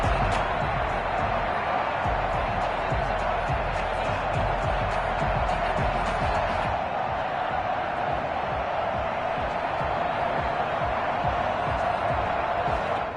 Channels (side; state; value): both; identical; correlation 1.00